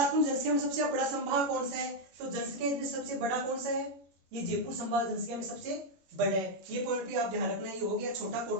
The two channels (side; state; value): left; late; 21 ms